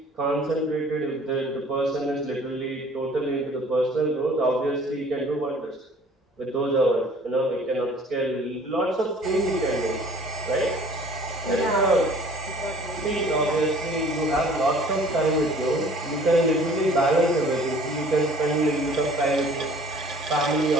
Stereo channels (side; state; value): both; normal; correlation 0.52